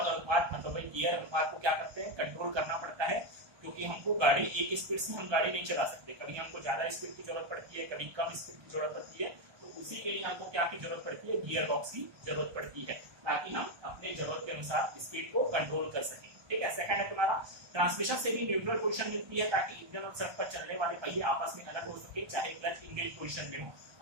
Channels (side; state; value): left; late; 1.3 ms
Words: अनुपात मतलब भाई गियर अनुपात को क्या करते हैं, कंट्रोल करना पड़ता है। क्योंकि हमको गाड़ी एक स्पीड से हम गाड़ी नहीं चला सकते, कभी हमको ज्यादा स्पीड की जरूरत पड़ती है, कभी कम स्पीड की जरूरत पड़ती है। तो उसी के लिए हमको क्या की जरूरत पड़ती है, गियर बॉक्स की जरूरत पड़ती है, ताकि हम अपने जरूरत के अनुसार स्पीड को कंट्रोल कर सकें, ठीक है। सेकंड है तुम्हारा ट्रांसमिशन से भी न्यूट्रल पोजीशन मिलती है, ताकि इंजन और सड़क पर चलने वाले पहिए आपस में अलग हो सके, चाहे क्लच इंगेज पोजीशन में हो।